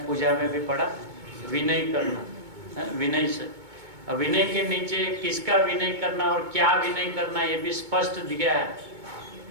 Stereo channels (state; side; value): late; left; 2.2 ms